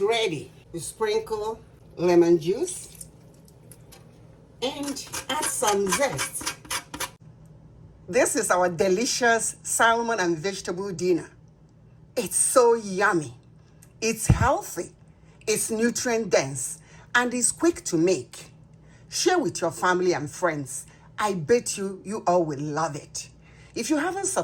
ready. You sprinkle lemon juice and add some zest. This is our delicious salmon and vegetable dinner. It's so yummy. It's healthy. It's nutrient dense and it's quick to make. Share with your family and friends. I bet you all will love it. If you haven't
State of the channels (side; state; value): both; identical; correlation 1.00